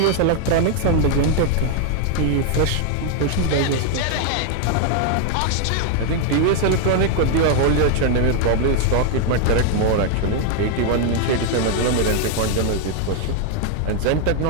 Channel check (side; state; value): both; different; correlation 0.00